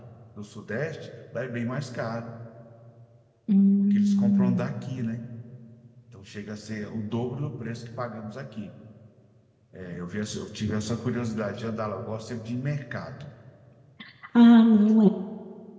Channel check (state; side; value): identical; both; correlation 1.00